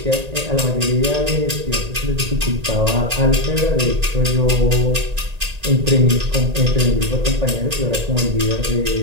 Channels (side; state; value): left; late; 1.9 ms